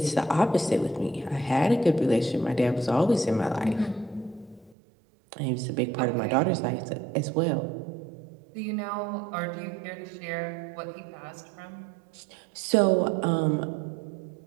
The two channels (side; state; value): left; drops out; at 4.8 s